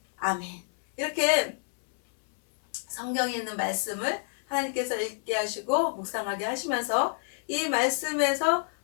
아멘. 이렇게 성경에 있는 말씀을 하나님께서 읽게 하시고 묵상하게 하시면서 이 말씀에서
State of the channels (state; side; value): silent; right; 59 dB below the other